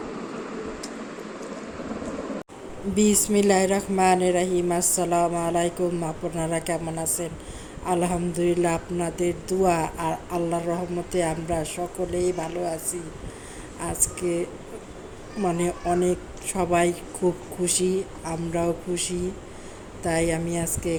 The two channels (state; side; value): identical; both; correlation 1.00